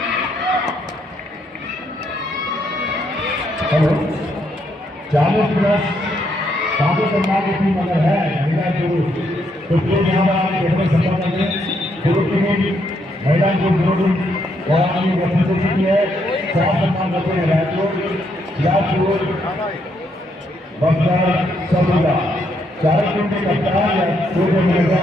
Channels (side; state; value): both; normal; correlation 0.75